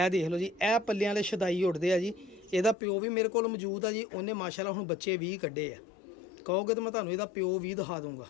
ਦੇਖ ਲਓ ਜੀ, ਇਹ ਪੱਲਿਆਂ ਵਾਲੇ ਛਦਾਈ ਉੱਡਦੇ ਆ ਜੀ। ਇਹਦਾ ਪਿਓ ਵੀ ਮੇਰੇ ਕੋਲ ਮੌਜੂਦ ਆ ਜੀ। ਉਹਨੇ ਮਾਸ਼ਾਅੱਲਾ ਹੁਣ ਬੱਚੇ 20 ਕੱਢੇ ਆ। ਕਹੋਗੇ ਤਾਂ ਮੈਂ ਤੁਹਾਨੂੰ ਇਹਦਾ ਪਿਓ ਵੀ ਦਿਖਾ ਦੂੰਗਾ।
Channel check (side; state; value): right; drops out; at 2.8 s